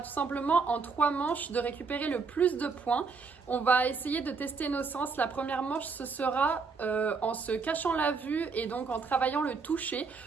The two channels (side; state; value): left; quieter; 4.8 dB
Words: simplement en 3 manches de récupérer le plus de points. On va essayer de tester nos sens. La première manche, ce sera en se cachant la vue et donc en travaillant le toucher.